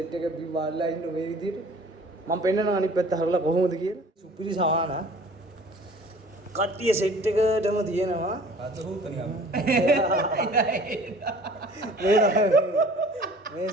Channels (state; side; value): normal; both; correlation 0.48